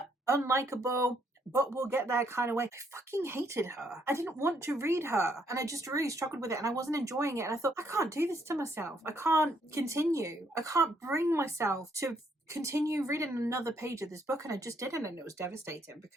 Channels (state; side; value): normal; both; correlation 0.71